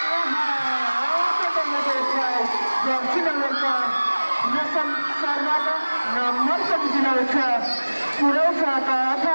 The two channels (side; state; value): both; inverted; correlation -1.00